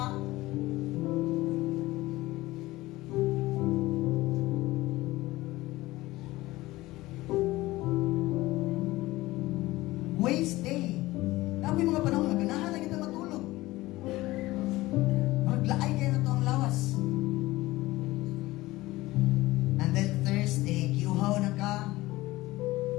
Waste Day. Na mga panahon nga ganahan lang kita matulog. Maglaay kayo na to ang lawas. And then Thursday, kiuhaw na ka.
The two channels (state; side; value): quieter; right; 18.6 dB